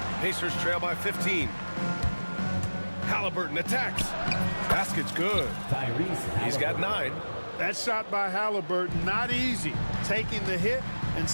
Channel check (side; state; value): both; inverted; correlation -1.00